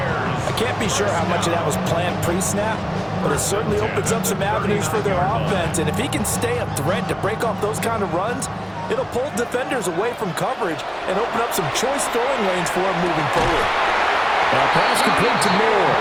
can't be sure how much of that was planned pre-snap, but it certainly opens up some avenues for their offense. And if he can stay a threat to break off those kind of runs, it'll pull defenders away from coverage and open up some choice throwing lanes for him moving forward. Now pass complete to Moore.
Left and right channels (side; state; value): both; identical; correlation 1.00